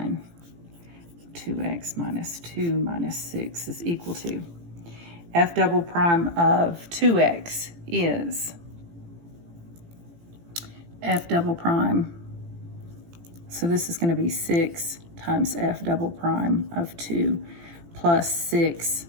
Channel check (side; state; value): left; late; 18 ms